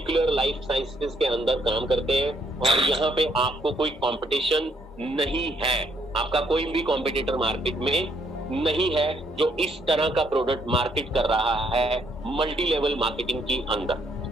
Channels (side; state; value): both; normal; correlation 0.70